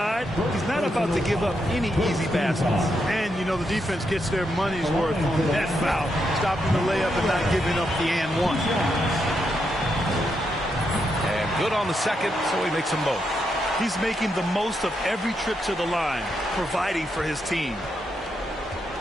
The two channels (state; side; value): normal; both; correlation 0.81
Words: He's not about to give up any easy baskets. And, you know, the defense gets their money's worth on that foul. Stopping the layup and not giving up the and one. Good on the second, so he makes them both. He's making the most of every trip to the line, providing for his team.